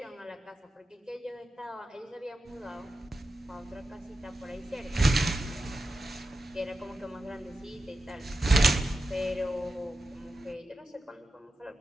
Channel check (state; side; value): normal; both; correlation 0.90